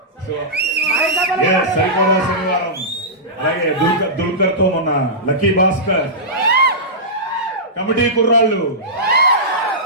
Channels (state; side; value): normal; both; correlation -0.16